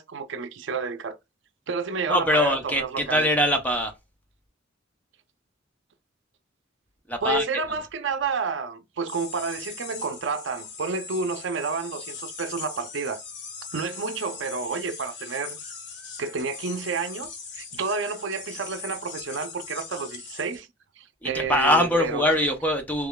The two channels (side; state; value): both; normal; correlation 0.21